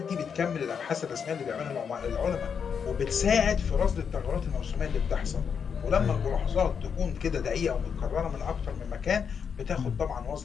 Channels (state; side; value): quieter; right; 6.8 dB